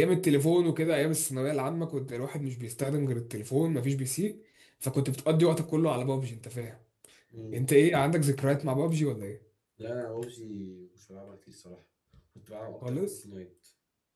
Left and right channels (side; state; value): both; identical; correlation 1.00